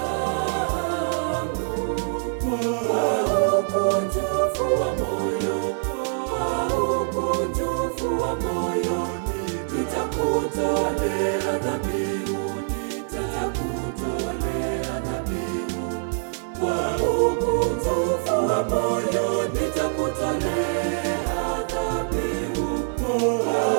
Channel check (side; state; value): left; silent; 62 dB below the other